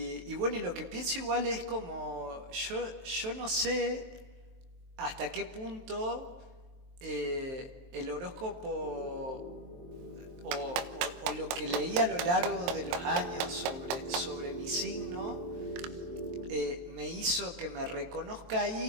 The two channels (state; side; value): late; left; 23 ms